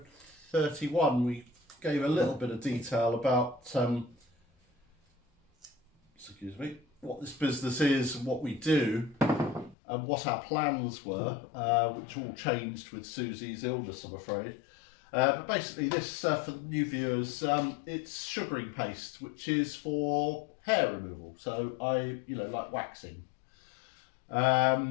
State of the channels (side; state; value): right; drops out; at 9.8 s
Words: 31. We gave a little bit of detail about what this business is and what we do and what our plans were, which all changed with Susie's illness, I'm afraid. But basically this, for the new viewers, it's sugaring paste, which is for hair removal. So like waxing.